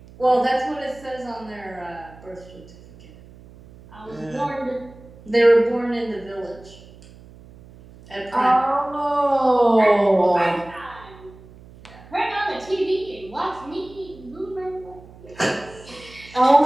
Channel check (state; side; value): noise; right; hum, 21 dB below the sound